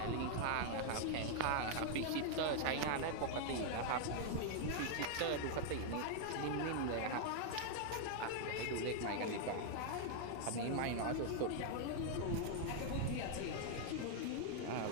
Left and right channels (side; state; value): both; different; correlation -0.01